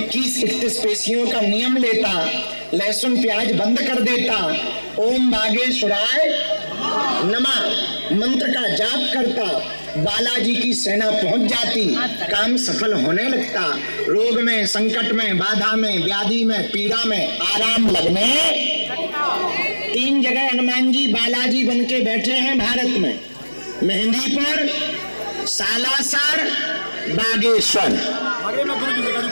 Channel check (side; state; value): both; inverted; correlation -1.00